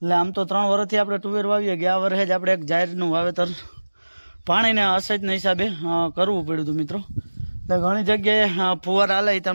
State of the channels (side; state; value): both; inverted; correlation -1.00